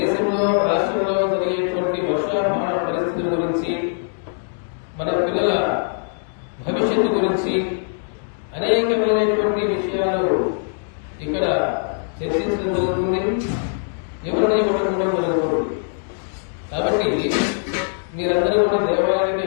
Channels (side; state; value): right; silent; digital silence